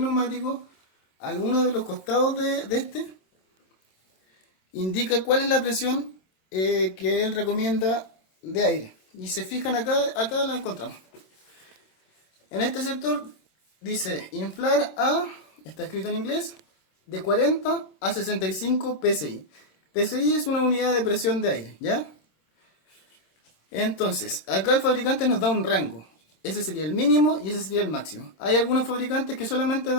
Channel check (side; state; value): right; late; 26 ms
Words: neumático, alguno de los costados de este, indica cuál es la presión que él recomienda de aire. Y se fijan acá la encontramos. En este sector dice inflar a, está escrito en inglés, de 40 a 65 psi. PSI es una unidad de presión de aire, ¿ya? Entonces, acá el fabricante nos da un rango. Ese sería el mínimo y ese sería el máximo. Hay algunos fabricantes que solamente